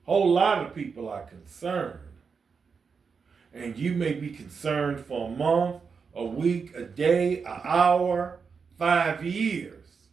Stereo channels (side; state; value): left; quieter; 5.6 dB